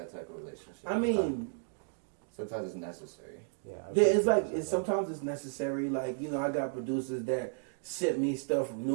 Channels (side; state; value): left; silent; digital silence